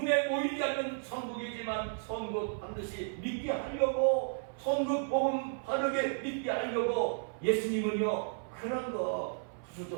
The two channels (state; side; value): silent; left; 55 dB below the other